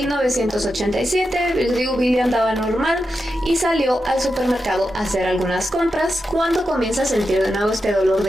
les digo, Bill andaba normal y salió al supermercado a hacer algunas compras cuando comienza a sentir de nuevo este dolor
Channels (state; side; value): normal; both; correlation 0.88